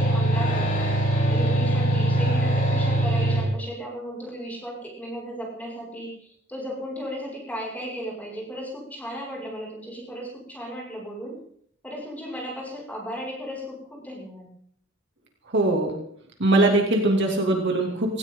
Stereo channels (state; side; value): normal; both; correlation 0.56